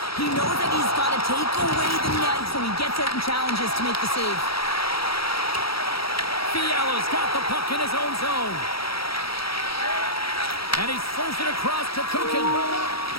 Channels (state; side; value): late; right; 0.76 ms